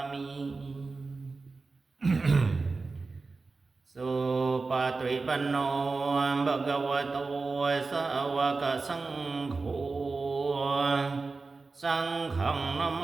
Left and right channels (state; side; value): quieter; left; 4.0 dB